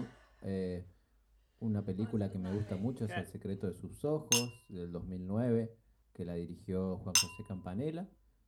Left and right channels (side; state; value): both; identical; correlation 1.00